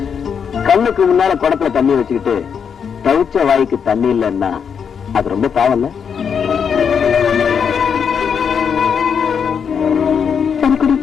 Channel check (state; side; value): quieter; right; 7.0 dB